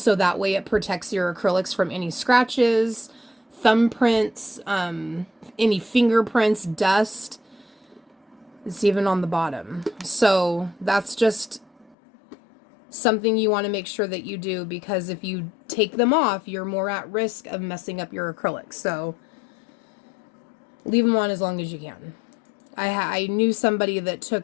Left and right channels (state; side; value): drops out; right; at 12.0 s